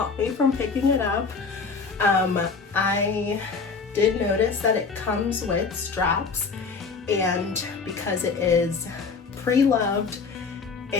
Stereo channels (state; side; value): quieter; right; 4.9 dB